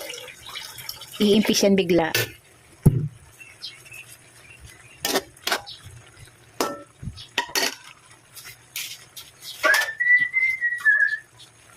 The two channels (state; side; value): identical; both; correlation 1.00